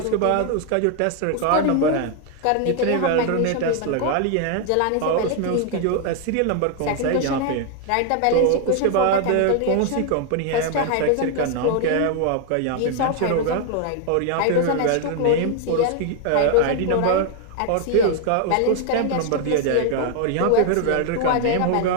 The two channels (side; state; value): both; different; correlation 0.00